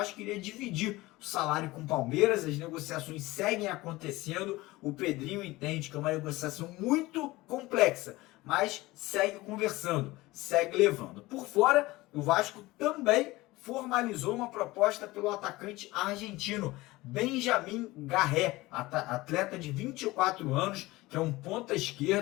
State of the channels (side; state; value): right; quieter; 19.8 dB